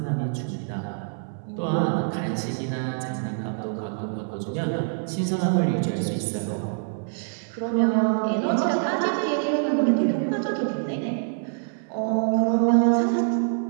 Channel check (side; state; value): left; silent; digital silence